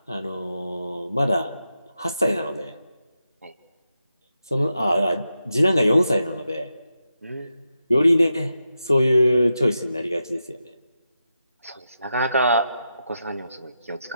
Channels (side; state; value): both; inverted; correlation -0.88